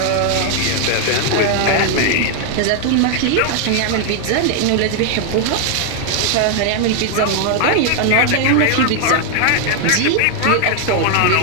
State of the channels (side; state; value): both; different; correlation 0.00